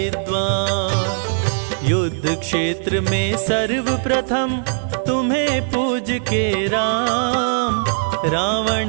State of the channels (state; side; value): silent; left; 57 dB below the other